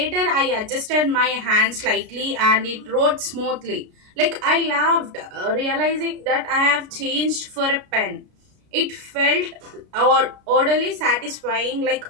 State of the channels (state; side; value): late; left; 33 ms